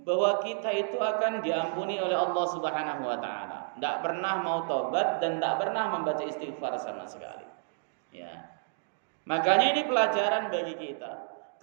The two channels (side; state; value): left; silent; digital silence